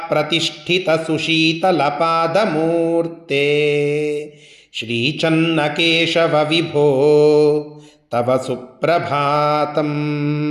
ಪ್ರತಿಷ್ಠಿತಸುಶೀತಲಪಾದಮೂರ್ತೆ ಶ್ರೀಚನ್ನಕೇಶವ ವಿಭೋ ತವ ಸುಪ್ರಭಾತಂ.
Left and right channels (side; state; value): both; identical; correlation 1.00